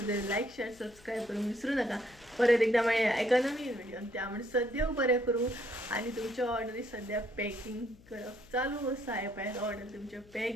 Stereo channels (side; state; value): left; noise; hum, 25 dB below the sound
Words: जाल्यार लायक शेअर सबस्क्रायब करूंक विसरूं नाका. परत एकदा मेळया एका नवीन व्हिडिओन. त्या म्हणसर देव बरें करूं आनी तुमच्या ऑर्डरी सद्या पॅकिंग करप चालू आसा. हे पळयात ऑर्डर तुमचे पॅक